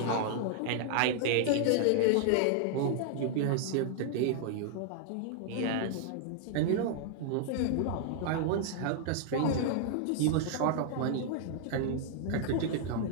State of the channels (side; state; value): both; different; correlation -0.01